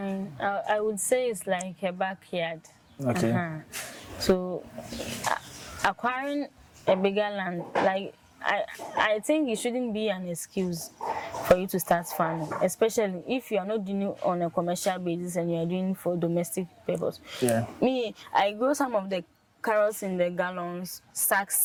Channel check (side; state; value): both; identical; correlation 1.00